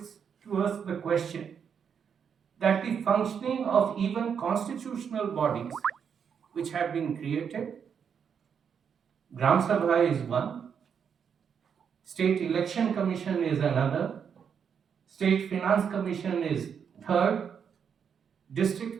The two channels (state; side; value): quieter; left; 7.2 dB